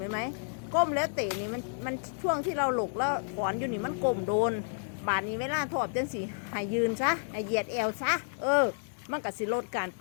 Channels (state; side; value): silent; right; digital silence